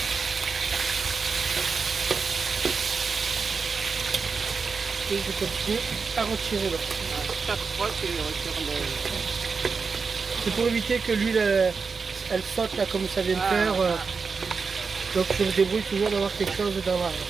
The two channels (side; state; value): left; quieter; 5.0 dB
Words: Et je continue à retirer l'eau. Chaque fois tu retires le... C'est pour éviter que l'huile elle saute là comme ça vient de faire. Donc je me débrouille toujours d'avoir quelque chose dans la...